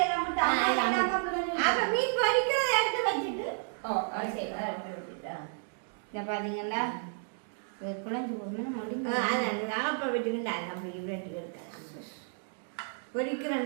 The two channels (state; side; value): silent; left; 56 dB below the other